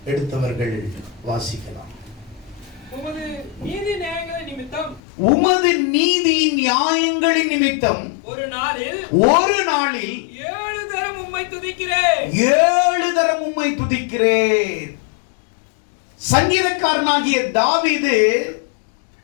எடுத்தவர்கள் வாசிக்கலாம். உமது நீதி நியாயங்களின் நிமித்தம் ஒரு நாளில் 7 தரம் உம்மை துதிக்கிறேன். 7 தரம் உம்மை துதிக்கிறேன். சங்கீதக்காரனாகிய தாவீது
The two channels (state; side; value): drops out; right; at 5.0 s